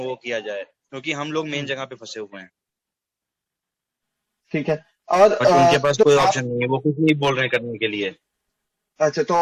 को किया जाए, क्योंकि हम लोग मेन जगह पे फंसे हुए हैं। ठीक है। और उनके पास तो कोई ऑप्शन नहीं है, वो कुछ नहीं बोल रहे करने के लिए। अच्छा, तो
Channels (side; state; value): both; identical; correlation 1.00